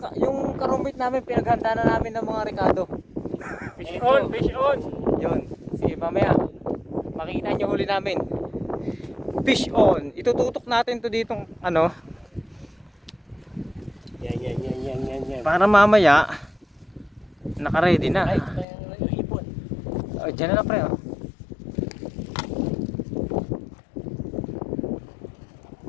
Yung karumit namin, pinaghanda na namin ng mga Ricardo. Fish on, fish on. Yun. Sige, mamaya. Makikita nyo huli namin. Fish on. Itututok natin to ditong ano. Yan. Para mamaya, naka-ready na. Ay, ito yung ipon. Diyan na lang pre.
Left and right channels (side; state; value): right; drops out; at 18.7 s